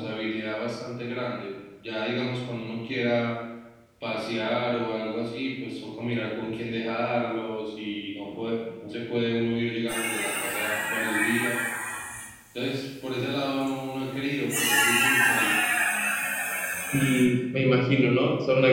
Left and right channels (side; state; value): both; identical; correlation 1.00